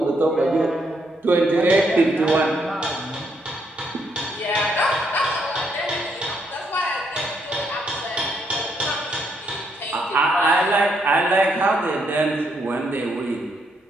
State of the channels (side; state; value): both; normal; correlation 0.75